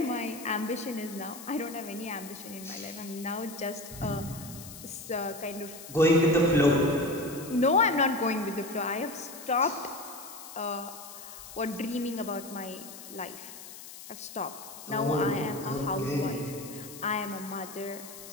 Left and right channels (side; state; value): left; noise; hiss, 14 dB below the sound